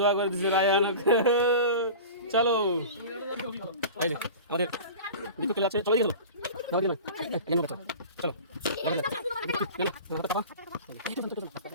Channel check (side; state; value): both; inverted; correlation -0.35